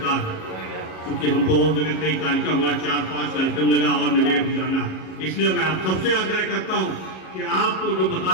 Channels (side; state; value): right; late; 37 ms